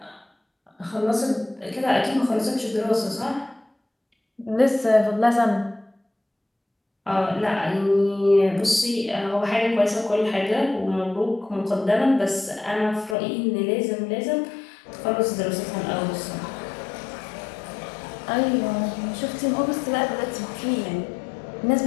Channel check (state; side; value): drops out; right; at 13.2 s